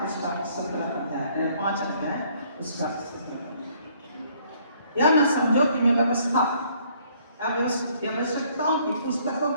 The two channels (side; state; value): both; inverted; correlation -0.63